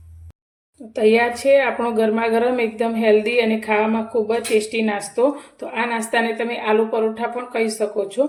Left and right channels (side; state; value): both; identical; correlation 1.00